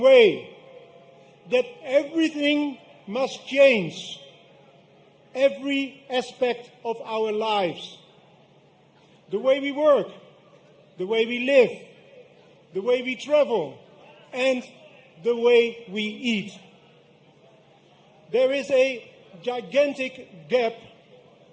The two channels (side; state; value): both; identical; correlation 1.00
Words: that everything must change, every aspect of our lives. The way we work, the way we live, the way we travel, and the way we eat. There is a gigantic gap